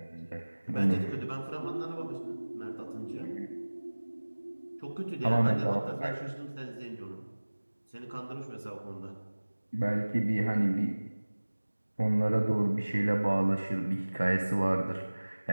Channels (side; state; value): both; inverted; correlation -1.00